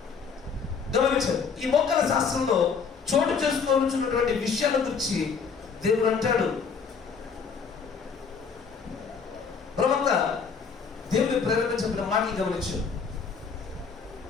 గమనించండి, ఈ మోకాళ్ళ శాస్త్రంలో చోటు చేసుకోవాల్సినటువంటి విషయాల గురించి దేవుడు అంటాడు. ప్రవక్త దేవుని ప్రేరణ చెప్పిన మాటలు గమనించు.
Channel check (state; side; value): quieter; right; 5.8 dB